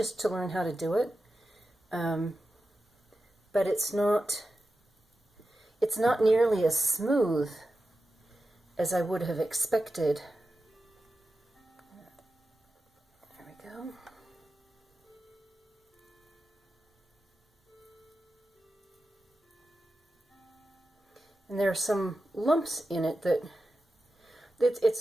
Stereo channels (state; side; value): normal; both; correlation 0.91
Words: to learn how to do it, but it's not nearly as smooth as I would have expected. There we go. And there are some lumps in it that